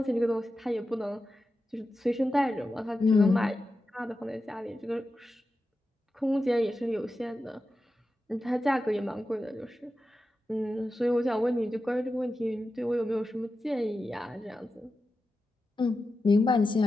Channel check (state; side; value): normal; both; correlation 0.91